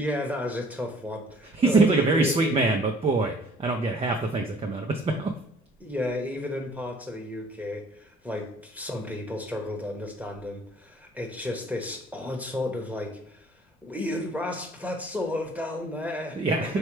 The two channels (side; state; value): both; normal; correlation 0.56